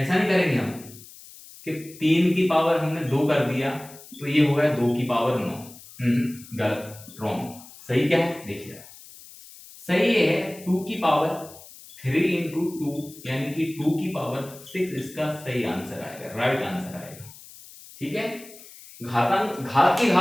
नहीं करेंगे हम कि 3 की पावर हमने 2 कर दिया तो ये हो गया 2 की पावर 9। गलत, रॉन्ग। सही क्या है देखिए, सही है 2 की पावर 3 इंटू 2, यानी कि 2 की पावर 6 इसका सही आंसर आएगा, राइट आंसर आएगा। ठीक है, घातांक घात की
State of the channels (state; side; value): noise; left; hiss, 19 dB below the sound